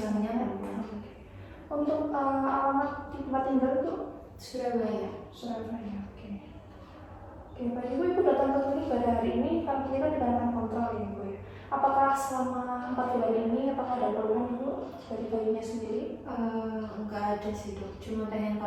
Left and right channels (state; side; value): identical; both; correlation 1.00